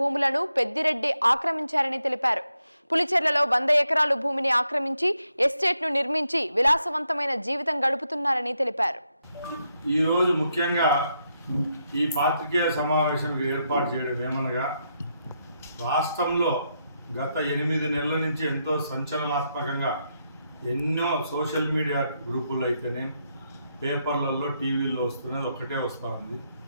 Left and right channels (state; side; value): inverted; both; correlation -0.80